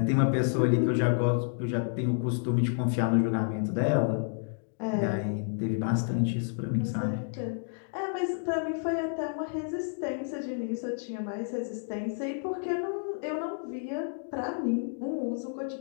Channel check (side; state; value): right; silent; digital silence